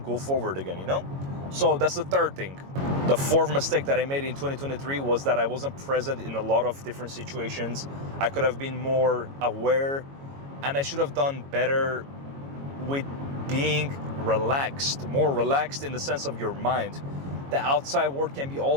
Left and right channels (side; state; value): left; late; 22 ms